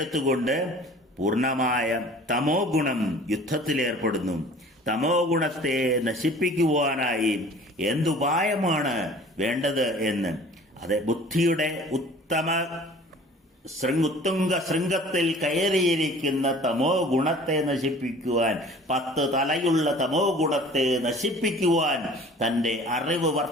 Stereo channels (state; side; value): normal; both; correlation 0.47